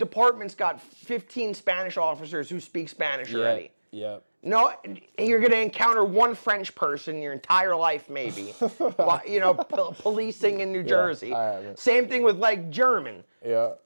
got 15 Spanish officers who speak Spanish already. Yeah. No, you're going to encounter one French person your entire life, maybe. Policing in New Jersey. Same thing with like German. Yeah.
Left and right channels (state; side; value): inverted; both; correlation -1.00